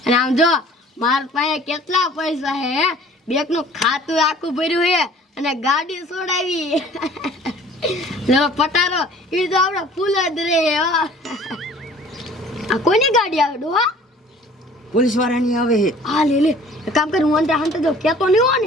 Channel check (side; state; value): both; normal; correlation 0.50